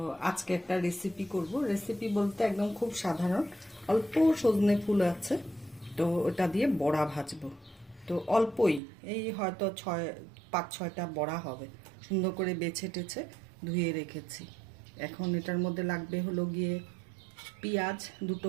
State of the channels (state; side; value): drops out; left; at 8.8 s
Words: আজকে একটা রেসিপি করব। রেসিপি বলতে একদম খুব সাধারণ, অল্প সজনে ফুল আছে, তো ওটা দিয়ে বড়া ভাজবো। তো অল্পই, এই হয়তো 5-6টা বড়া হবে। সুন্দর করে বেছে টেছে ধুয়ে রেখেছি। এখন এটার মধ্যে লাগবে হলো গিয়ে পেঁয়াজ, দুটো